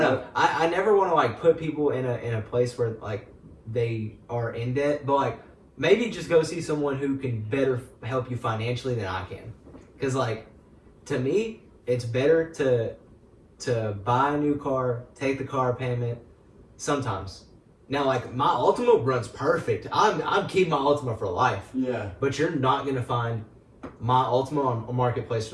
truck. I never want to like put people in a place where like they are in debt, but like maybe just go see someone who can better help you financially than I can. Because like to me, it's better to buy a new car, take the car payment. Sometimes. Now, like my Ultima runs perfect. I'm keeping my Ultima for life. Yeah. But you're not gonna find my Ultima on a marketplace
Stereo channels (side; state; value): both; identical; correlation 1.00